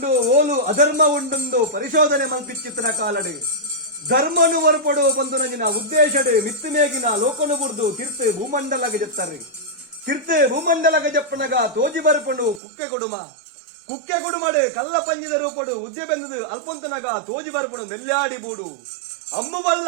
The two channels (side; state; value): left; drops out; at 12.6 s